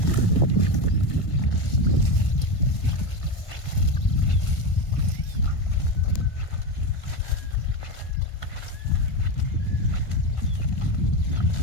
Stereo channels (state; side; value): late; right; 1.5 ms